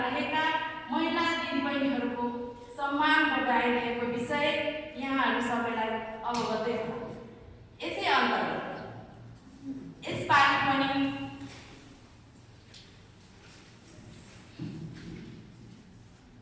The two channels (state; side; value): identical; both; correlation 1.00